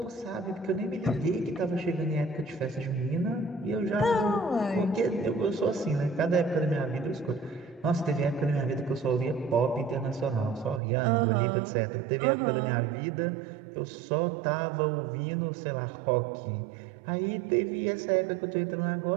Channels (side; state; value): left; drops out; at 10.8 s